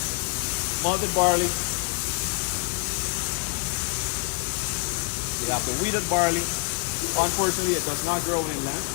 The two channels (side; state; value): right; quieter; 35.9 dB